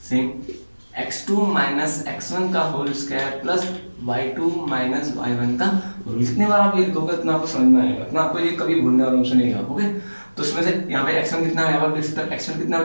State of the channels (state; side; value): inverted; both; correlation -1.00